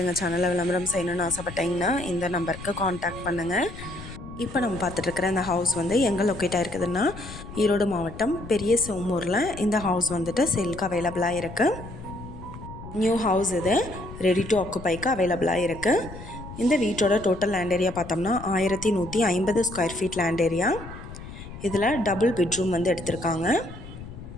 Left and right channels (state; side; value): noise; left; rumble, 13 dB below the sound